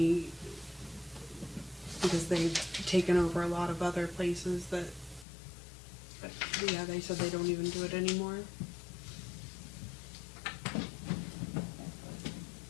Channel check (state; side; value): drops out; right; at 5.2 s